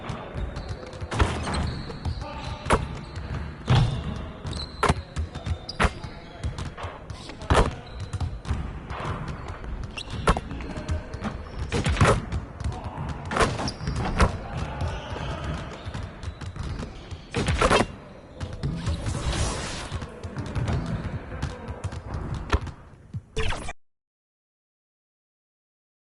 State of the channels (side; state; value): both; identical; correlation 1.00